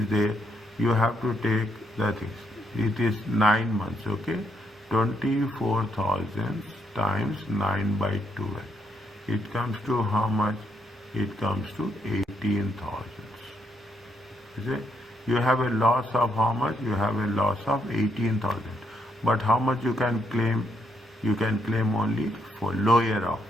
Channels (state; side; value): normal; both; correlation 0.77